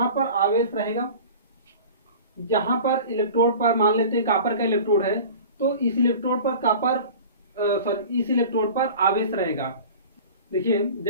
पर आवेश रहेगा, यहाँ पर इलेक्ट्रोड पर मान लेते हैं कापर का इलेक्ट्रोड है, तो इस इलेक्ट्रोड पर इस इलेक्ट्रोड पर आवेश रहेगा। देखिए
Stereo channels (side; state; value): both; inverted; correlation -0.39